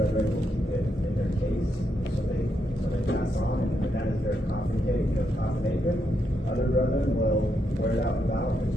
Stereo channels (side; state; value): both; normal; correlation 0.81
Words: will keep it in their case so they pass on, and that is their coffin apron. Other brethren will wear it out without, but